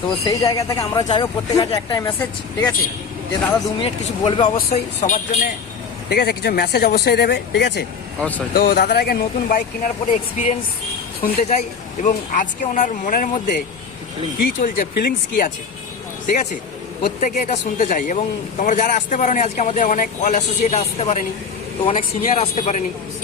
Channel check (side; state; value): right; quieter; 5.7 dB